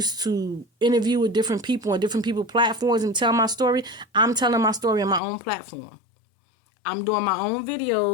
to interview with different people on different people's platforms and tell my story. I'm telling my story on my own platform. I'm doing my own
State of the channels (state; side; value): drops out; right; at 5.2 s